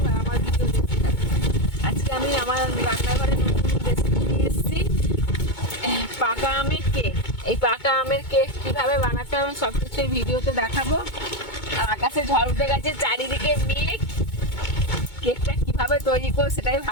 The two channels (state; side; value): late; right; 2.2 ms